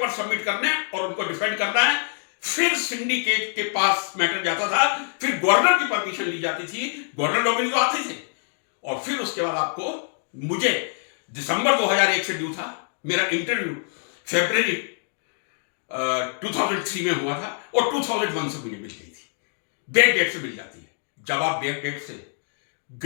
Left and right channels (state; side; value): silent; right; digital silence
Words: सबमिट करने और उनको डिफेंड करना है, फिर सिंडिकेट के पास मैटर जाता था, फिर गवर्नर की परमिशन ली जाती थी, गवर्नर नॉमिनी तो आते थे, और फिर उसके बाद आपको, मुझे दिसंबर 2001 से ड्यू था, मेरा इंटरव्यू फरवरी 2003 में हुआ था और 2001 से मुझे मिल गई थी, बैक डेट से मिल जाती है। जब आप बैक डेट से